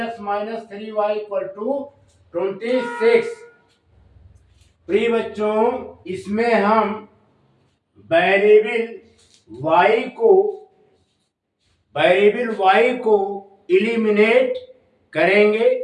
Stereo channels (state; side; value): identical; both; correlation 1.00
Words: minus 3y equal to 26। प्रिय बच्चों, इसमें हम वेरिएबल y को इलिमिनेट करेंगे।